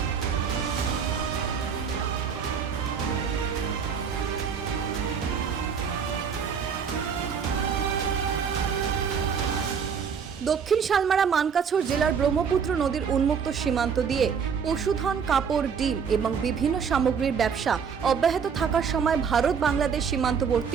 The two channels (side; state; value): left; quieter; 6.7 dB